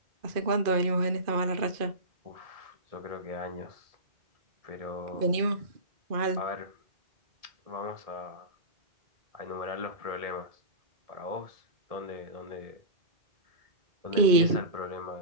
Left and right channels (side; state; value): left; late; 2.5 ms